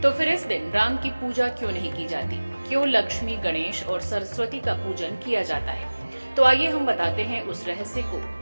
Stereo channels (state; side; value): inverted; both; correlation -1.00